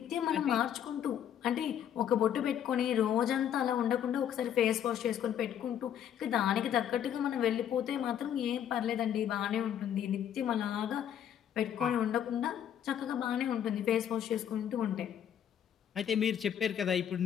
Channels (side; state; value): right; quieter; 9.7 dB